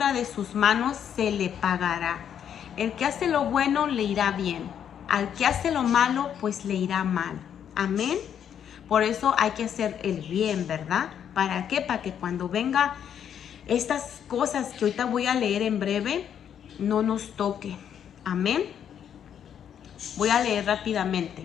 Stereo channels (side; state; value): right; quieter; 8.9 dB